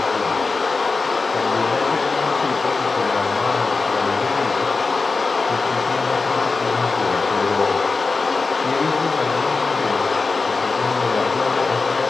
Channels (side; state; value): right; quieter; 4.1 dB